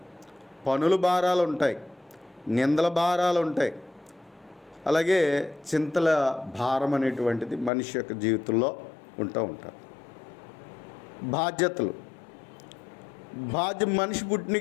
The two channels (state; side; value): drops out; right; at 7.7 s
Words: పనుల భారాలు ఉంటాయి, నిందల భారాలు ఉంటాయి, అలాగే చింతల భారం అనేటువంటిది మనిషి యొక్క జీవితంలో ఉంటుంది. బాధ్యతలు, మనిషి పుట్టిన